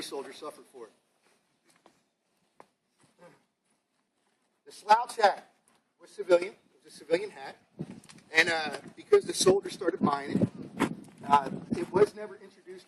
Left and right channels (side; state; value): both; identical; correlation 1.00